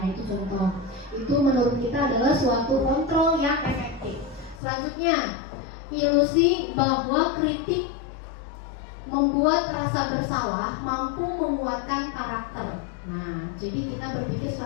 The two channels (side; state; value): right; drops out; at 4.6 s